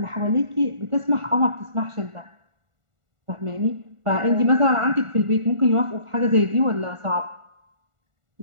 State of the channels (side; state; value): left; late; 1.5 ms